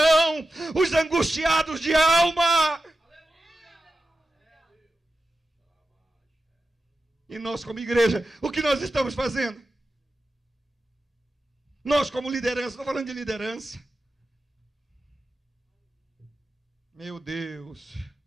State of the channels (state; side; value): normal; both; correlation 0.91